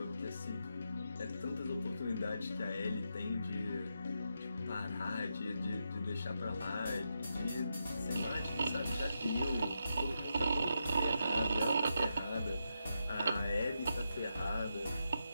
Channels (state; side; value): inverted; both; correlation -0.84